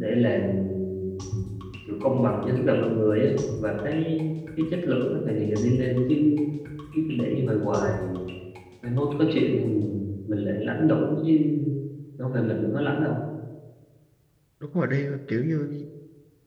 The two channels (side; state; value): both; identical; correlation 1.00